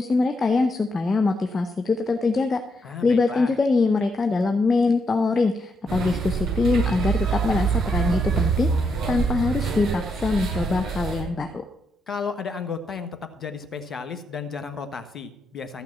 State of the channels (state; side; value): normal; both; correlation 0.80